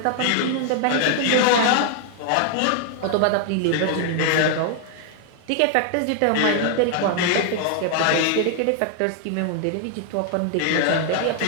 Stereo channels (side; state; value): both; different; correlation 0.00